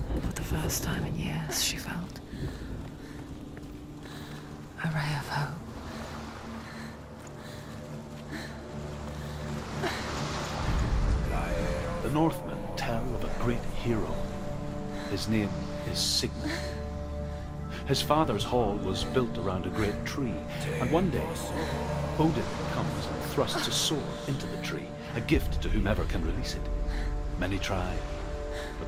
For the first time in years, she felt a ray of hope. The Northmen tell of a great hero. His name is Sigmund. His father's hall was built around a great tree, and one day Odin comes and thrusts a sword into the tree, a gift to whomever can release it. Many try, but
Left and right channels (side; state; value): both; identical; correlation 1.00